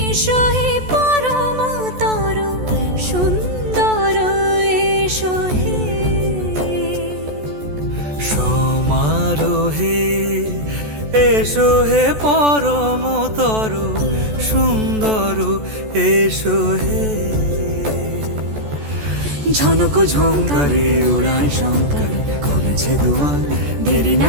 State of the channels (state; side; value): late; left; 14 ms